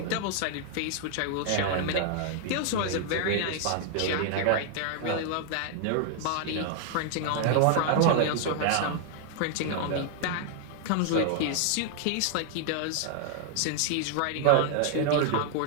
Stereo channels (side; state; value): both; different; correlation 0.00